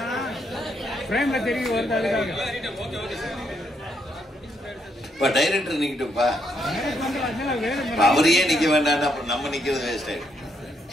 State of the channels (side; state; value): both; normal; correlation 0.76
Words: ஃப்ரேம்ல தெரிய வருது. அதுக்காக இப்ப டைரக்டர் நிக்கட்டும்பா, அவரையே நிக்க வேண்டாம், அப்புறம் நம்ம நிக்கிறது வேஸ்ட் ஆயிடும்.